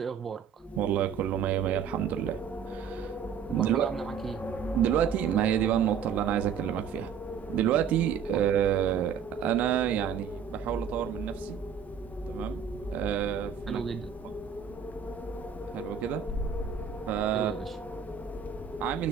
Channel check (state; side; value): quieter; left; 7.5 dB